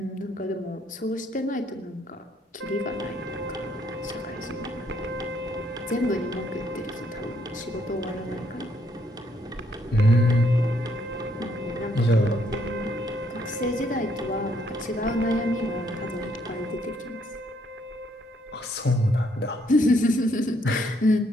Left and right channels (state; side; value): normal; both; correlation 0.70